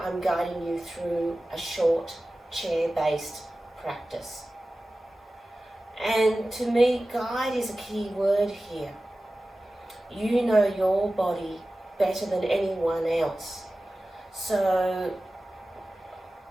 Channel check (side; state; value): both; normal; correlation 0.96